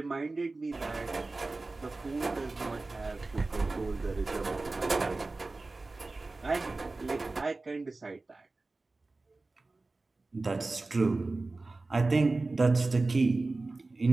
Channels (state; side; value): quieter; left; 3.4 dB